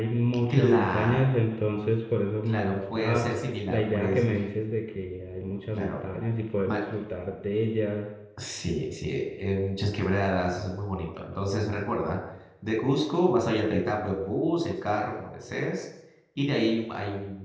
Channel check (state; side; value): identical; both; correlation 1.00